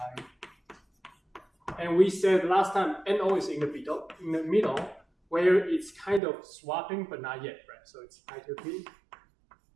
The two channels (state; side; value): drops out; left; at 6.2 s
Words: 2p. And we said last time NO is in the middle, where it's kind of swapping, but not yet, right? So it's pi 2p